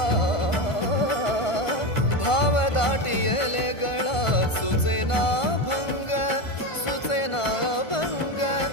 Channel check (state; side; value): late; right; 1.5 ms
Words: भाव दाटियले गळा, सुचेना भंग, सुचेना भंग,